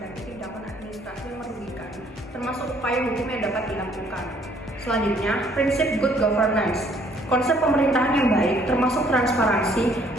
tindakan administrasi yang merugikan, termasuk upaya hukum yang dapat dilakukan. Selanjutnya, prinsip good governance. Konsep pemerintahan yang baik termasuk transparansi,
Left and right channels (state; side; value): normal; both; correlation 0.62